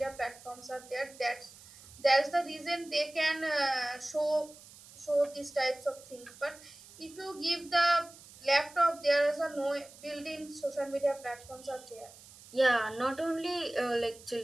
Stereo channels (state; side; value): noise; right; hiss, 20 dB below the sound